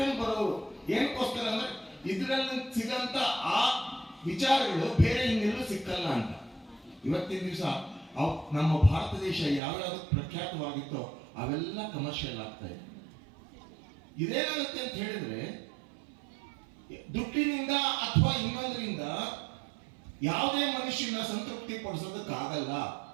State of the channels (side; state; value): left; drops out; at 9.6 s